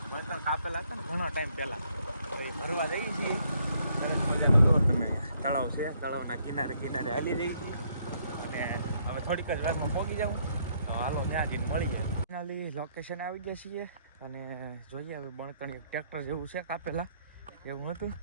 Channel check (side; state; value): both; inverted; correlation -0.69